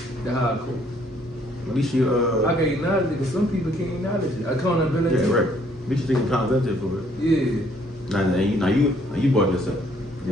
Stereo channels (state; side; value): normal; both; correlation 0.65